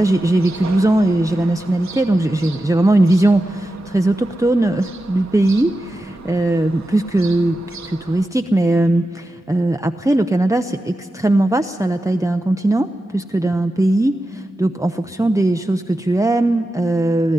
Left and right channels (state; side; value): normal; both; correlation 0.91